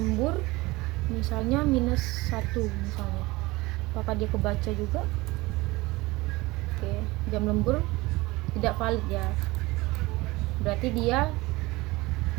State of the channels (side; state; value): left; quieter; 21.3 dB